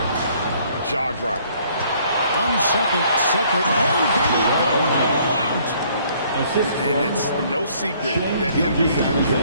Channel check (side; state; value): both; inverted; correlation -0.62